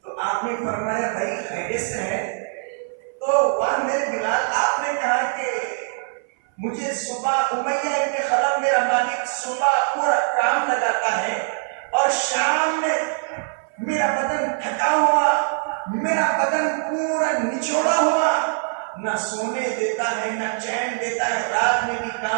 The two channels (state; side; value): silent; left; 59 dB below the other